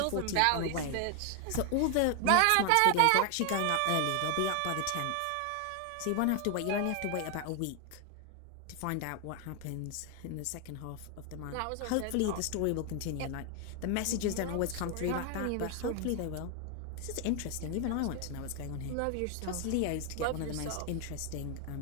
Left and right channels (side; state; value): both; different; correlation 0.00